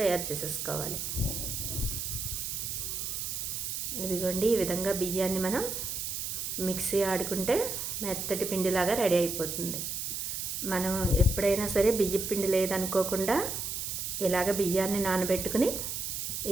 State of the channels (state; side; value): noise; right; hiss, 3 dB below the sound